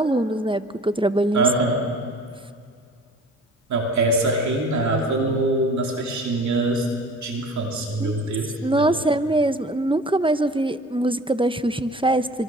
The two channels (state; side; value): normal; both; correlation 0.44